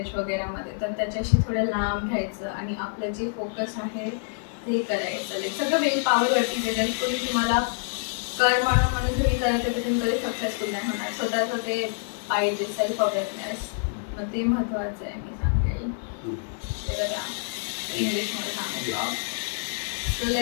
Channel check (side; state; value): right; silent; digital silence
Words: वगैरेमध्ये, तर त्याच्याशी थोडं लांब राहायचं आणि आपलं जे फोकस आहे ते करायचं. लाईक सगळं वेल पॉवरवरती जर तुम्ही तुम्हाला कर म्हणून तुम्ही करत आहे तर तुम्ही कधी सक्सेसफुल नाही होणार. स्वतःचं ते पाहिजे सेल्फ अवेअरनेस, मग ते महत्त्वाचं आहे मी सांगेल. ते बघा इंग्लिशमध्ये सांगितलं. So